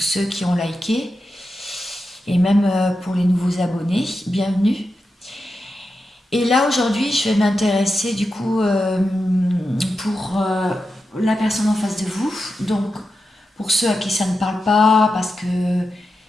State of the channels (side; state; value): both; normal; correlation 0.89